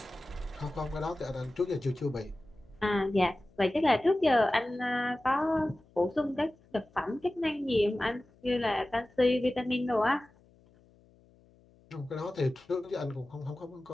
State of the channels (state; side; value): noise; left; hum, 29 dB below the sound